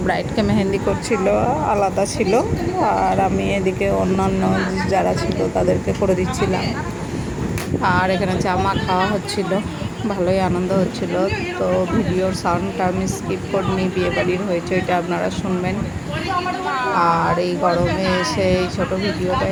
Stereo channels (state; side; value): identical; both; correlation 1.00